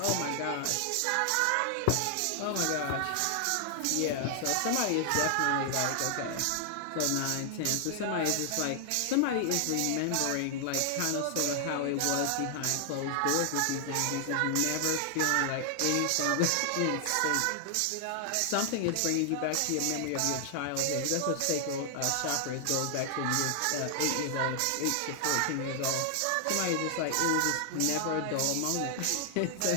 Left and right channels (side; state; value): both; different; correlation 0.00